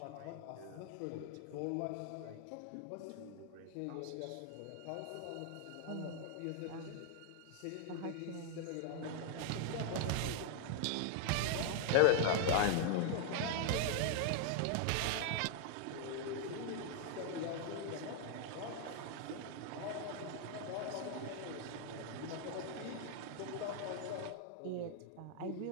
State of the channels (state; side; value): different; both; correlation 0.00